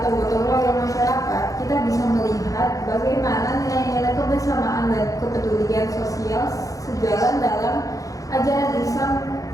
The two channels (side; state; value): right; late; 0.17 ms